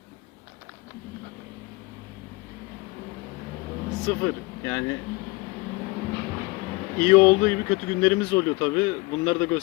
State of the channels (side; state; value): right; quieter; 23.6 dB